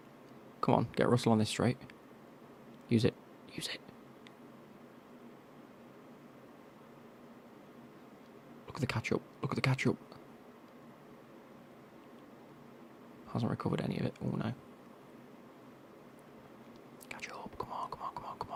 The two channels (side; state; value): both; identical; correlation 1.00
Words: Come on, get Russell on this straight. Use it. Use it. Look at the catch-up. Look at the catch-up. Hasn't recovered any of it. Oh, no. Catch up. Come on, come on, come on, come